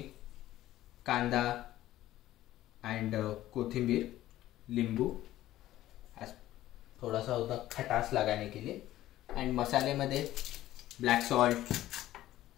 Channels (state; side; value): quieter; right; 14.5 dB